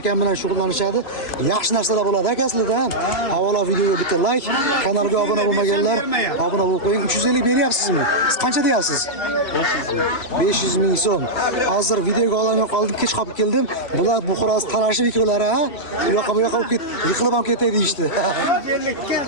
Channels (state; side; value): late; right; 3.1 ms